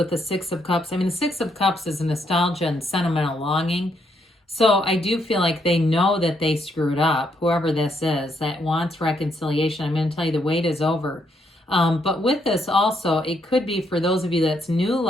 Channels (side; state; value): both; normal; correlation 0.75